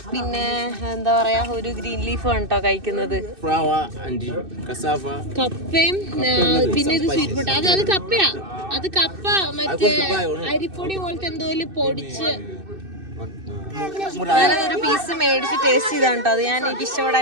പിന്നെ എന്താ പറയാ ഒരു ഗ്രീൻ ലീഫും ആണ് കേട്ടോ കഴിക്കുന്നത്. കപ്പയും പിന്നെ ഇത് സ്വീറ്റ് പൊട്ട. അത് കപ്പയാ. അത് കപ്പ മറ്റേ അരിപ്പൊടി പോലത്തെ എന്തോ പൊടിച്ച്. ഞാനതൊരു പീസ് മേടിച്ച് ടേസ്റ്റ് ചെയ്താണ് കേട്ടോ. അത് ഞാൻ എനിക്ക്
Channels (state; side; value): late; left; 2.6 ms